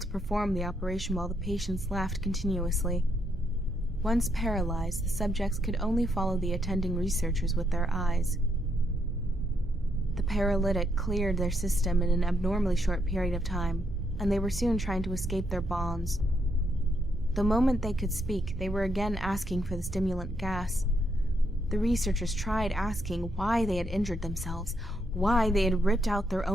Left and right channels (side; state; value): both; normal; correlation 0.77